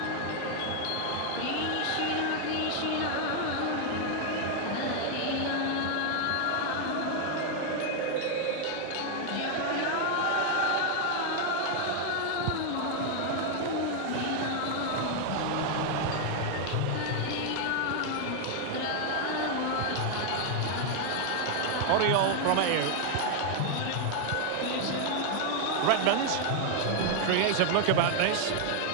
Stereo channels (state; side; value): different; both; correlation 0.00